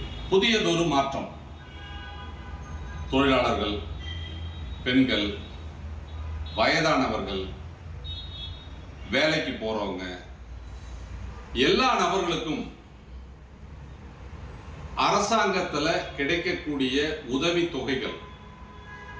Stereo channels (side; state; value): both; identical; correlation 1.00